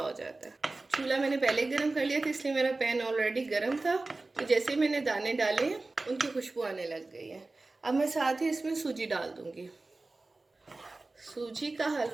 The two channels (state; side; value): quieter; left; 3.2 dB